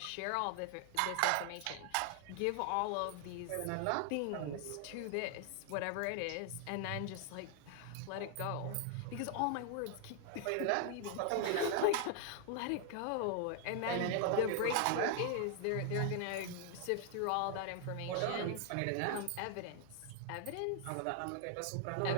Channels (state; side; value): different; both; correlation 0.00